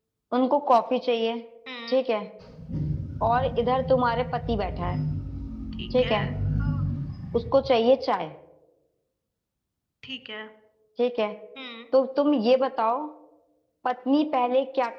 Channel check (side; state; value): both; identical; correlation 1.00